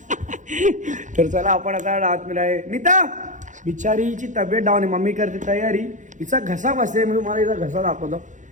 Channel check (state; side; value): late; left; 0.36 ms